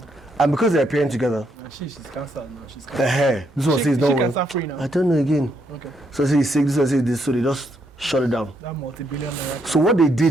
And because they're appearing together, She's cancelled now. She's the cancelled. hair, this one says no She one. cancer free now. I don't know again. Okay. So I say he's sick, this one says this, so they just shut it down. That multi-billion naira. So what they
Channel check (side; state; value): both; normal; correlation 0.75